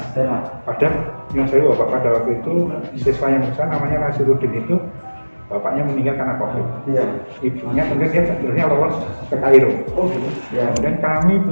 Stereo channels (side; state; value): both; inverted; correlation -1.00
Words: Padahal yang saya Bapak pada waktu itu siswa yang besar namanya Nasiruddin itu bapaknya meninggal karena COVID. Ibunya kemudian dia sebenarnya lolos ke Kairo. Kemudian kami